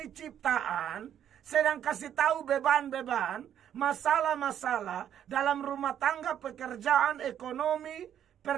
ciptaan, sedang kasih tahu beban-beban, masalah-masalah dalam rumah tangga, pekerjaan, ekonomi,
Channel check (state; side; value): quieter; left; 9.9 dB